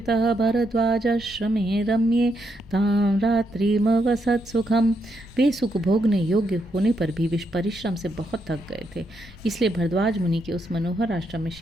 भरद्वाजाश्रमे रम्ये तां रात्रिमवसत् सुखम। वे सुख भोगने योग्य होने पर भी विष परिश्रम से बहुत थक गए थे, इसलिए भरद्वाज मुनि के उस मनोहर आश्रम में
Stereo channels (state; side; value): noise; right; hum, 29 dB below the sound